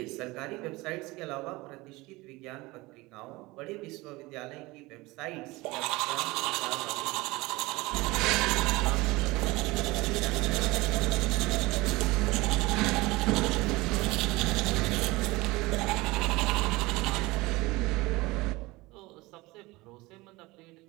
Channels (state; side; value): quieter; left; 21.6 dB